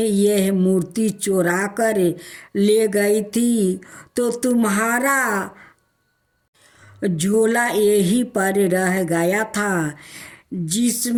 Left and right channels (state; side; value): identical; both; correlation 1.00